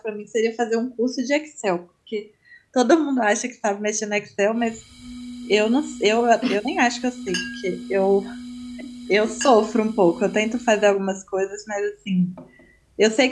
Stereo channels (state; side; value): identical; both; correlation 1.00